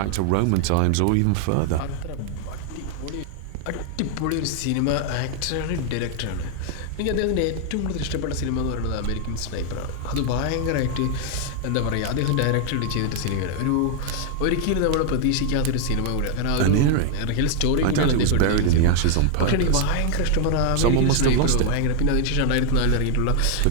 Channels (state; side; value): different; both; correlation 0.00